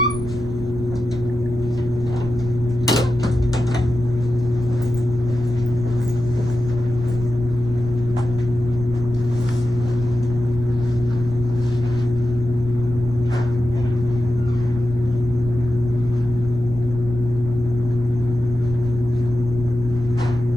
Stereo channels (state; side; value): noise; right; rumble, 11 dB below the sound